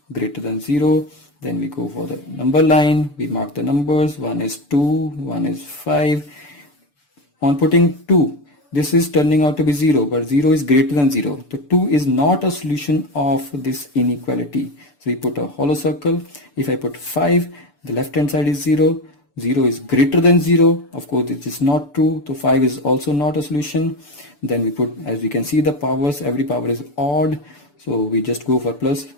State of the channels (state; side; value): late; right; 6.9 ms